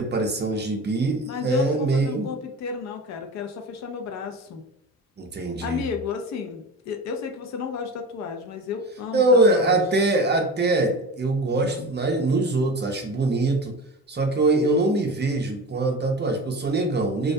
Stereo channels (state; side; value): normal; both; correlation 0.30